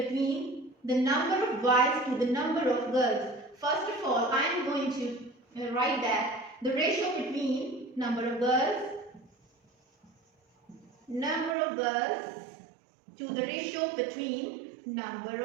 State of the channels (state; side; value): drops out; left; at 11.6 s